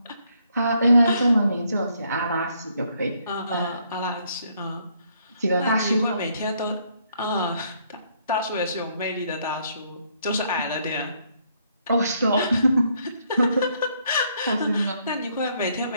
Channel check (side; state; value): both; inverted; correlation -0.70